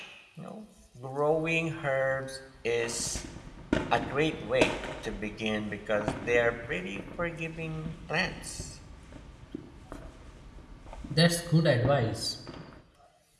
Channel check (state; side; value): identical; both; correlation 1.00